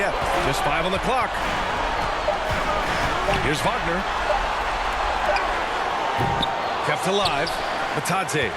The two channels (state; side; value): identical; both; correlation 1.00